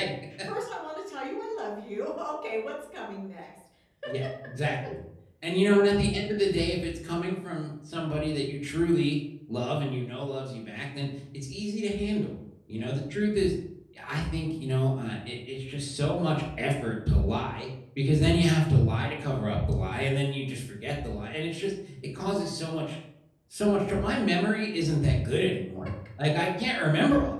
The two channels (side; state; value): both; identical; correlation 1.00